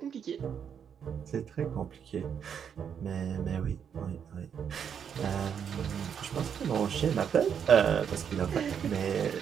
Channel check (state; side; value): quieter; left; 7.8 dB